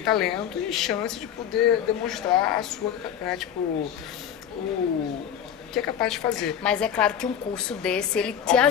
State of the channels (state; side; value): quieter; right; 9.2 dB